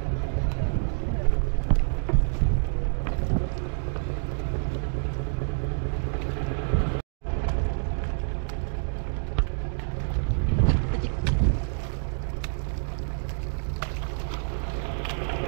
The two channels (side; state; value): left; silent; 57 dB below the other